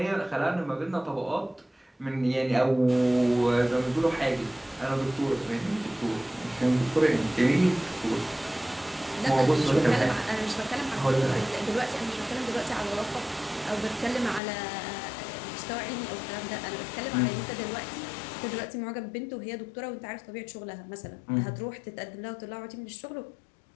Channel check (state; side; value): drops out; right; at 14.4 s